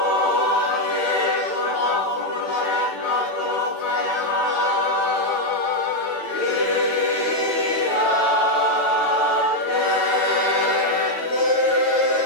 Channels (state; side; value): late; right; 9.0 ms